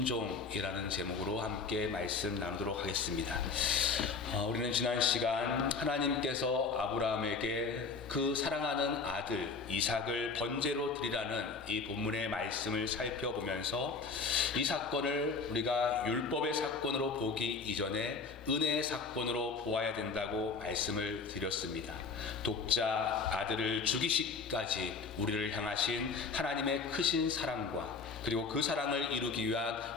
제목으로 함께 말씀 나누도록 하겠습니다. 우리는 지난 시간 하나님께서 아브라함에게 그 사랑하는 아들 이삭을 번제로 드리라는 이 본문의 말씀을 살펴보면서 이 사건을 우리가 율법의 사건으로 보기 이전에 은혜의 사건으로 보아야 된다고 말씀을 드렸습니다. 독자 아들을 죽이시기까지 우리를 향하신 하나님의 크신 사랑과 그리고 그 사랑을 이루기 위한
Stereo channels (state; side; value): quieter; right; 4.6 dB